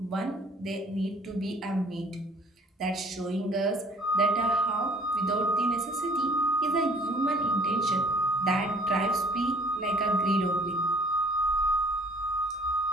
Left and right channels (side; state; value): both; normal; correlation 0.55